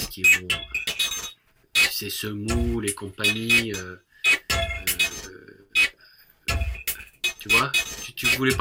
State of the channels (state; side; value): identical; both; correlation 1.00